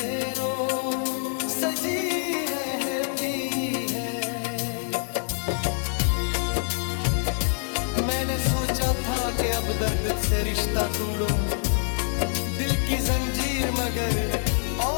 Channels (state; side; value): silent; right; digital silence